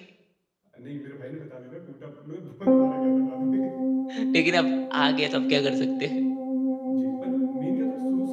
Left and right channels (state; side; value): identical; both; correlation 1.00